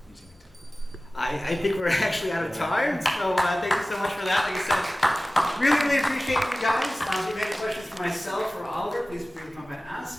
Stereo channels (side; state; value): both; normal; correlation 0.97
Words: using LinkedIn. I think we're actually out of time, so thank you so much for that. Like I said, really appreciate you guys. If you have any questions for myself or Oliver, please feel free to come and